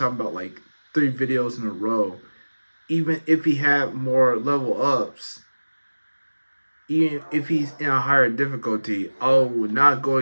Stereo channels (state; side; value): inverted; both; correlation -1.00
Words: about 3 videos in a row, even if he had more level ups, even if he's in a higher difficulty, I would not go